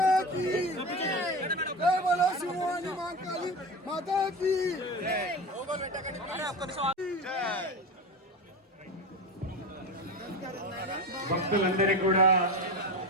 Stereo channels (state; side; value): normal; both; correlation 0.25